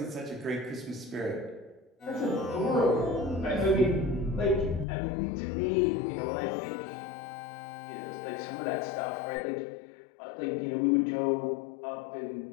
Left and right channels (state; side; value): drops out; right; at 4.9 s